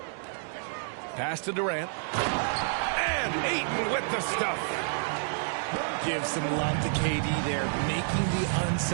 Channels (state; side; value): silent; left; digital silence